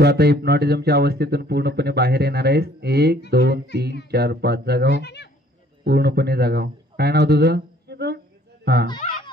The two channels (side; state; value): both; normal; correlation 0.58